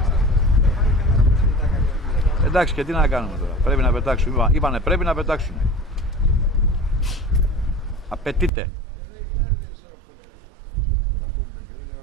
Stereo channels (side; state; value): left; drops out; at 8.5 s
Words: Εντάξει, και τι να κάνουμε τώρα, πρέπει να πετάξουμε, είπανε πρέπει να πετάξουμε. Απαιτείται.